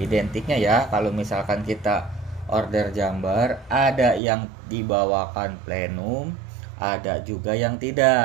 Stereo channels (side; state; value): left; drops out; at 4.2 s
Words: ya, kalau misalkan kita order chamber ada yang dibawakan plenum, ada juga yang